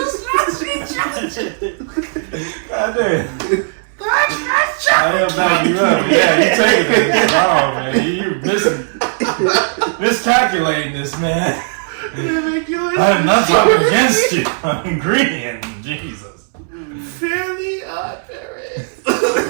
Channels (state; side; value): silent; left; digital silence